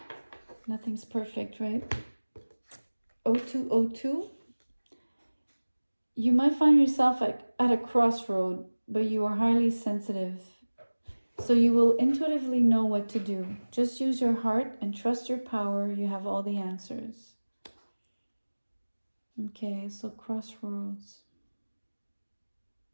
Nothing's perfect, right? 0202. You might find yourself at a crossroad, but you are highly sensitive. So you will intuitively know what to do. Just use your heart and trust your power. You have all the answers. Okay, so crossroads.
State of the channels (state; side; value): inverted; both; correlation -1.00